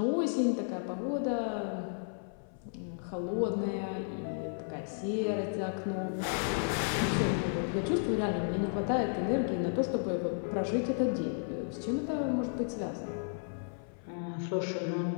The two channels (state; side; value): silent; right; 56 dB below the other